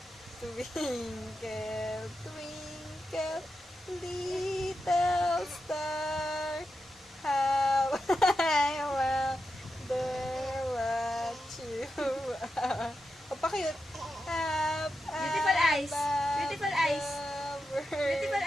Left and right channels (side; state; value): both; normal; correlation 0.88